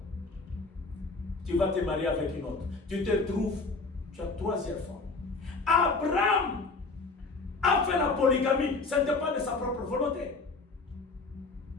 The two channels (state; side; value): quieter; right; 3.8 dB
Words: Tu vas te marier avec une autre. Tu te trouves, tu as 3e femme. Abraham a fait la polygamie. Ce n'était pas de sa propre volonté.